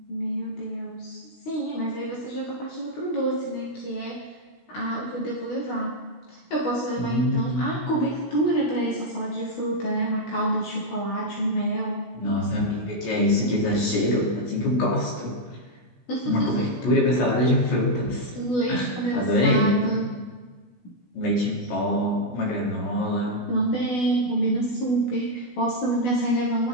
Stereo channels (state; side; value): late; right; 17 ms